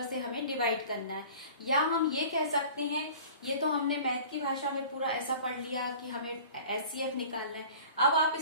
से हमें डिवाइड करना है। या हम ये कह सकते हैं, ये तो हमने मैथ की भाषा में पूरा ऐसा पढ़ लिया कि हमें एचसीएफ निकालना है। अब आप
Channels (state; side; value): inverted; both; correlation -0.44